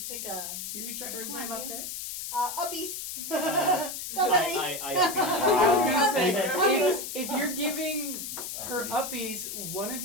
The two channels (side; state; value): left; noise; hiss, 6 dB below the sound